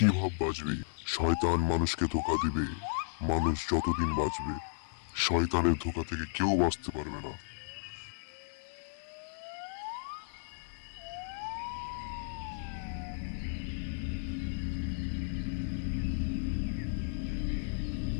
ভাব বাঁচবি? শয়তান মানুষকে ধোকা দিবে, মানুষ যতদিন বাঁচবে শয়তানের ধোকা থেকে কেউ বাঁচতে পারবে না।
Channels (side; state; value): right; silent; digital silence